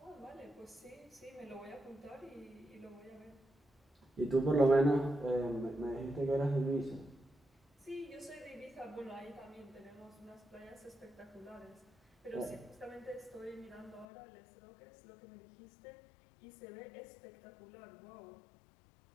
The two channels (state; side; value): drops out; right; at 14.1 s